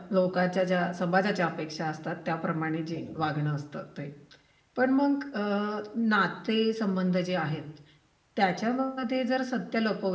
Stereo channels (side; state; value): both; identical; correlation 1.00